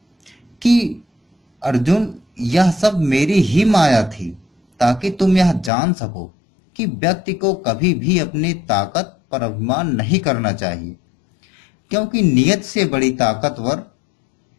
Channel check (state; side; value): drops out; right; at 5.7 s